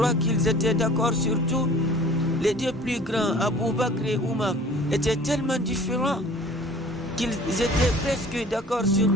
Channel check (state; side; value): normal; both; correlation 0.48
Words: qu'ils étaient d'accord sur tout? Les deux plus grands, Abu Bakr et Omar, étaient tellement différents qu'ils étaient presque d'accord sur